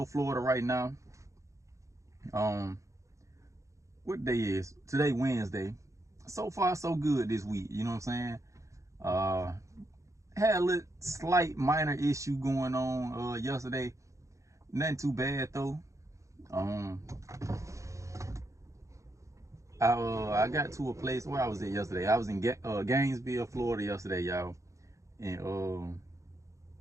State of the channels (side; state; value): left; late; 0.15 ms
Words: Florida. Right now, what day is today? Wednesday. So far, so good this week. You know what I'm saying? Had a little slight minor issue going on yesterday. Nothing too bad though. I got to a place where I was at yesterday. I was in Gainesville, Florida yesterday, y'all, and